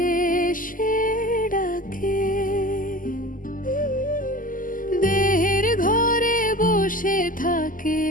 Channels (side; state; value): right; late; 0.39 ms